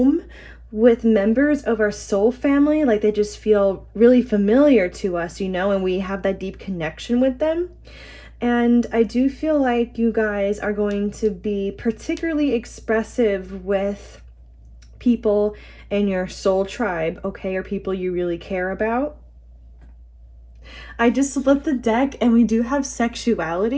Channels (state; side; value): identical; both; correlation 1.00